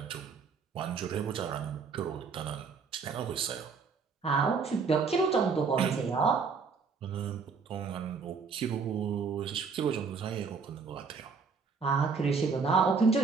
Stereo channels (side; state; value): left; quieter; 5.2 dB